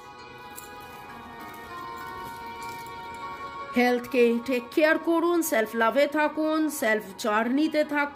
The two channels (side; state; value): both; identical; correlation 1.00